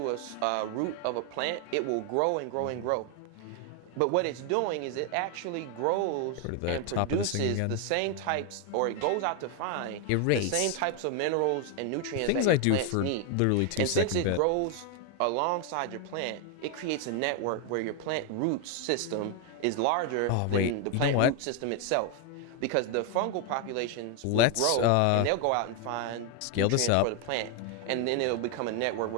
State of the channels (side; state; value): both; different; correlation 0.01